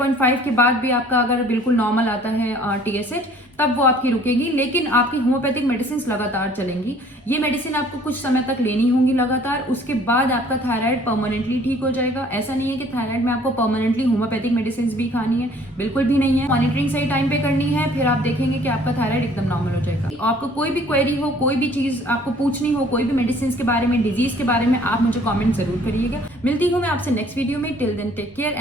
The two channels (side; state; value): both; normal; correlation 0.55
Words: के बाद भी आपका अगर बिल्कुल नॉर्मल आता है TSH तब वो आपकी रुकेगी, लेकिन आपकी होम्योपैथिक मेडिसिन लगातार चलेंगी। ये मेडिसिन आपको कुछ समय तक लेनी होंगी लगातार, उसके बाद आपका थायराइड परमानेंटली ठीक हो जाएगा। ऐसा नहीं है कि थायराइड में आपको परमानेंटली होम्योपैथिक मेडिसिन भी खानी है, बिल्कुल भी नहीं है। मॉनिटरिंग सही टाइम पे करनी है, फिर आप देखेंगे कि आपका थायराइड एकदम नॉर्मल हो जाएगा। आपको कोई भी क्वेरी हो, कोई भी चीज आपको पूछनी हो, कोई भी मेडिसिन के बारे में, डिजीज के बारे में, आप मुझे कॉमेंट जरूर करिएगा। मिलती हूँ मैं आपसे नेक्स्ट वीडियो में। Till then take care